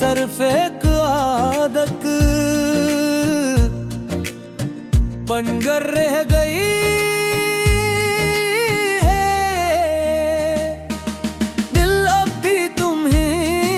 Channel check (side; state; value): both; identical; correlation 1.00